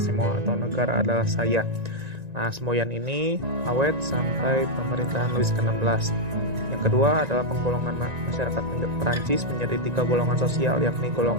semua atau negara adalah saya. Nah, semboyan ini awet sampai pemerintahan Louis ke-16. Yang kedua adalah penggolongan masyarakat Perancis menjadi 3 golongan sosial, yakni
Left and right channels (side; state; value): left; late; 1.9 ms